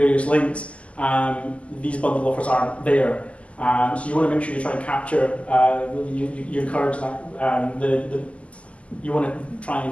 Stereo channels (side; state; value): right; late; 0.062 ms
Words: links, these bundle offers aren't there. So you want to make sure you try and capture, you encourage that, you want to try